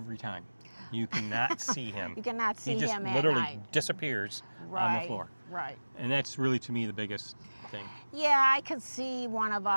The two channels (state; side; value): inverted; both; correlation -1.00